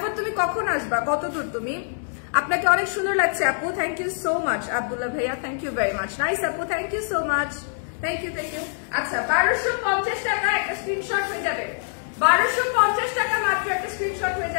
তুমি কখন আসবা, কত দূর তুমি? আপনাকে অনেক সুন্দর লাগছে আপু, thank you so much. Abdullah ভাইয়া, thank you very much. Nice আপু, thank you so much, thank you thank you. আচ্ছা, 1250 টাকা একটা স্ক্রিনশট হয়ে যাবে, 1250 টাকা মাত্র একটা স্ক্রিনশট হয়ে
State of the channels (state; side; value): silent; right; digital silence